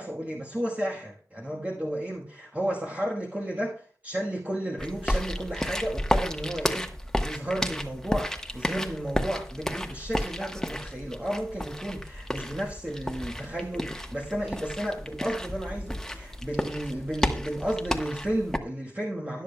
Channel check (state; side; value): normal; both; correlation 0.93